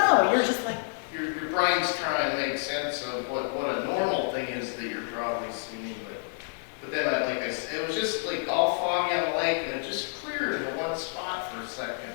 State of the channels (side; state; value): right; silent; digital silence